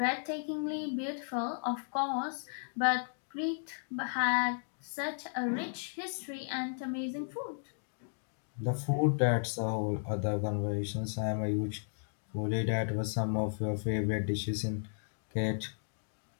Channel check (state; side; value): silent; right; digital silence